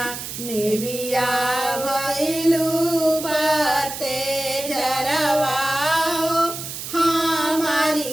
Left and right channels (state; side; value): noise; right; hiss, 8 dB below the sound